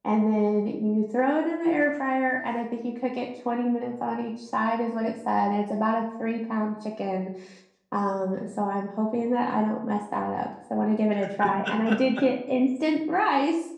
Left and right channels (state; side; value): identical; both; correlation 1.00